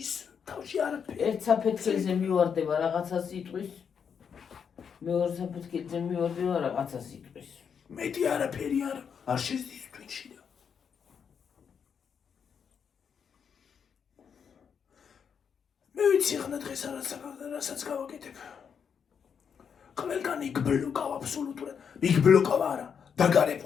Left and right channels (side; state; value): right; quieter; 7.0 dB